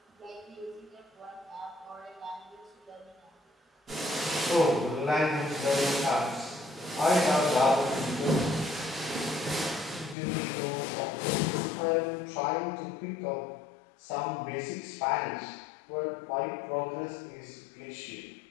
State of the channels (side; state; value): right; drops out; at 10.2 s